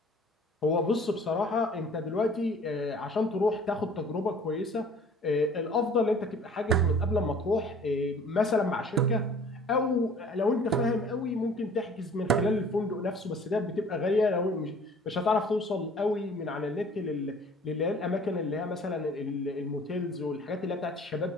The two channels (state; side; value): normal; both; correlation 0.50